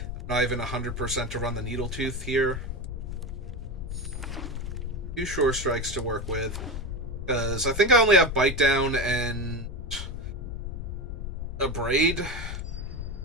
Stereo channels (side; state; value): left; noise; rumble, 5 dB below the sound